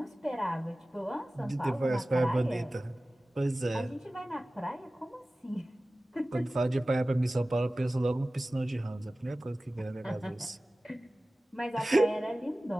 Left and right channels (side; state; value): both; normal; correlation 0.97